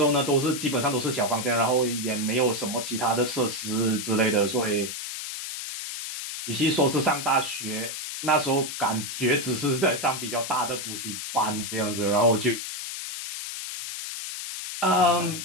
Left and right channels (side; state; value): left; noise; hiss, 6 dB below the sound